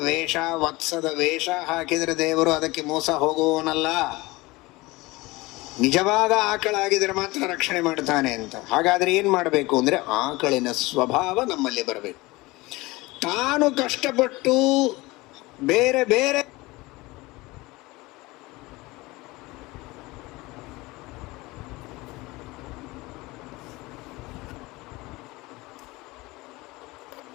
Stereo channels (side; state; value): right; quieter; 21.6 dB